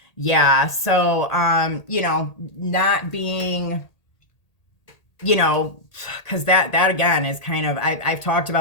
Yeah, so, you know, not being, you know, because that again is kind of, I've talked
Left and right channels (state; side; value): late; right; 1.8 ms